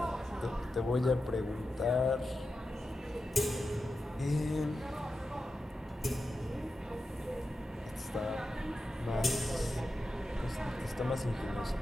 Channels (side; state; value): both; normal; correlation 0.91